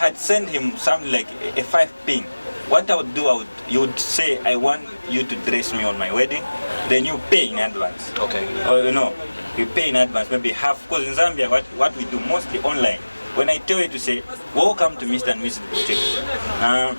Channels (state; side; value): inverted; both; correlation -1.00